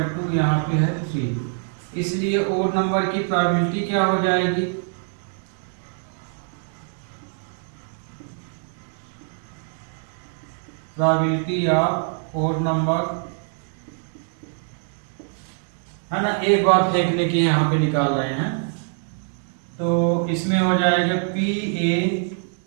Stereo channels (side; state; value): left; silent; 56 dB below the other